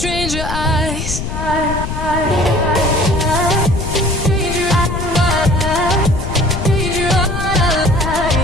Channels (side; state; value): left; noise; rumble, 5 dB below the sound